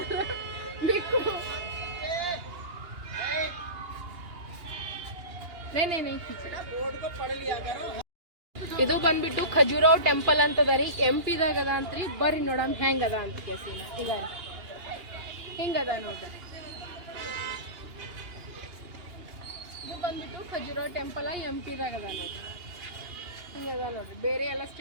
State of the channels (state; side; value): late; left; 2.8 ms